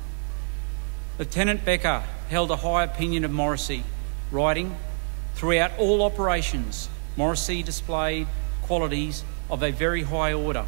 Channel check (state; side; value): silent; left; 61 dB below the other